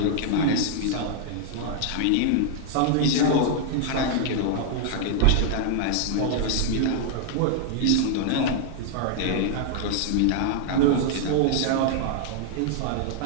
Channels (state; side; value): different; both; correlation -0.01